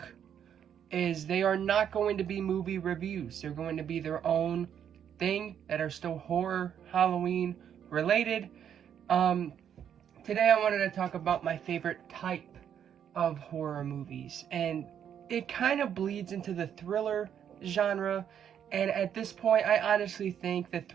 is they are not going to be movie reviews. They're going to be their own thing that are still horror, Halloween related. Um, Today I wanted to talk about my favorite type of horror movies, and it kind of bleeds into the thriller genre. And at this point, I honestly think the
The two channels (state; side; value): quieter; left; 8.9 dB